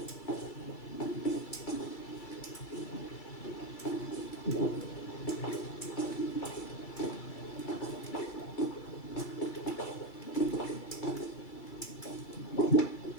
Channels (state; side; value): late; right; 2.3 ms